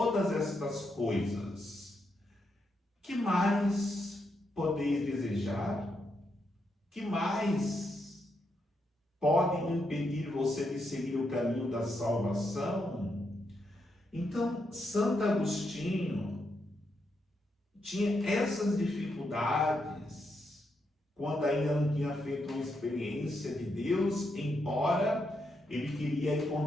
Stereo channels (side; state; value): both; normal; correlation 0.81